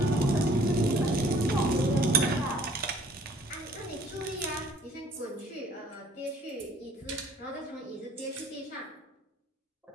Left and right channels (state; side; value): normal; both; correlation 0.56